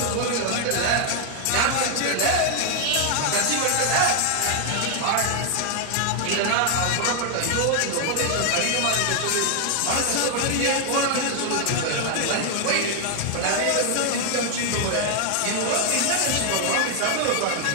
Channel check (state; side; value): different; both; correlation 0.00